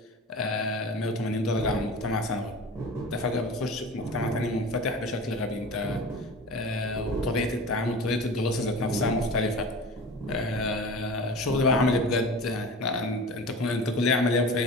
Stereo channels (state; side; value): normal; both; correlation 0.35